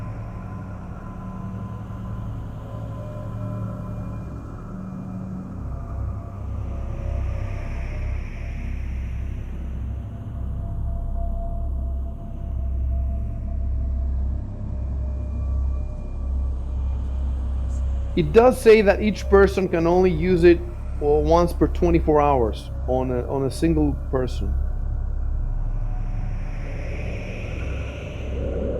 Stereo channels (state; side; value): identical; both; correlation 1.00